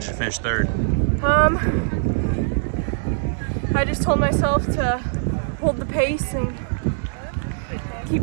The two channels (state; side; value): silent; left; digital silence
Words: you to finish third? I just told myself to hold the pace and